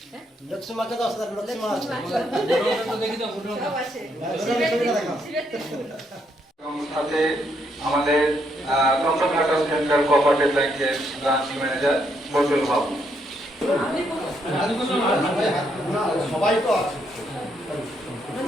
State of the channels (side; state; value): both; normal; correlation 0.75